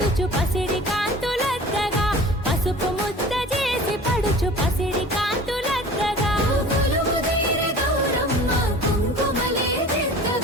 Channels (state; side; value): normal; both; correlation 0.42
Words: పసిడి కాంతులద్దగా పసుపు ముద్ద చేసి పడుచు పసిడి కాంతులద్దగా